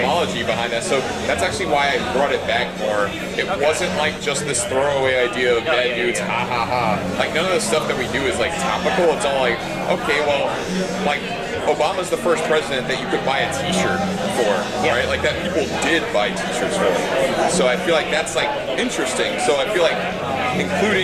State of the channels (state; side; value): identical; both; correlation 1.00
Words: behind that. So that's actually why I brought it back more. It wasn't just this throwaway idea of bad dudes, ha ha ha. None of the stuff that we do is topical. It's all okay, well, Obama's the first president that you could buy a T-shirt for, right? That people did buy T-shirts for. So I feel that's interesting. So I feel